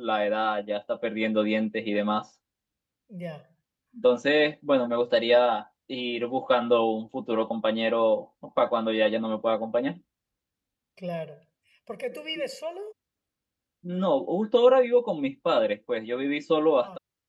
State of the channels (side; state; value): both; identical; correlation 1.00